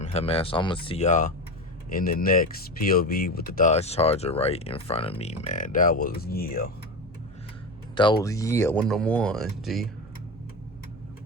him, man. So I'm gonna see y'all in the next POV with the Dodge Charger right in front of me, man. That was, yeah. One of them ones, G.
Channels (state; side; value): normal; both; correlation 0.22